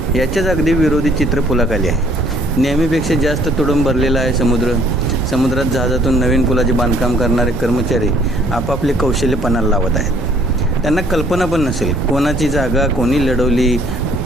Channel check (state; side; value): normal; both; correlation 0.61